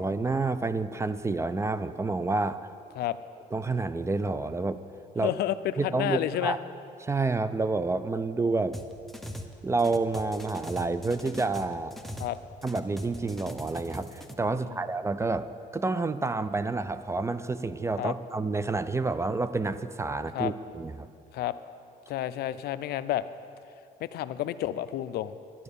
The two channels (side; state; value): both; normal; correlation 0.66